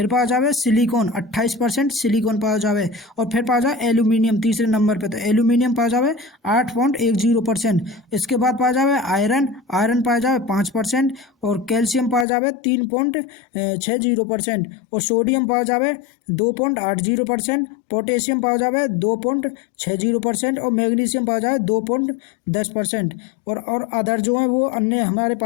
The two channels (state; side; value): drops out; right; at 12.2 s